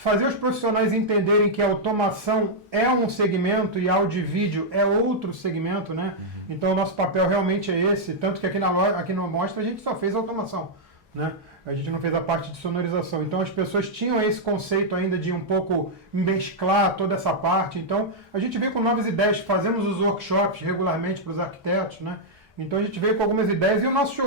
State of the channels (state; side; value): normal; both; correlation -0.05